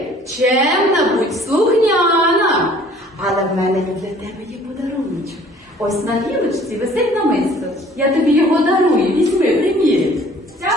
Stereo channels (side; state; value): both; normal; correlation 0.54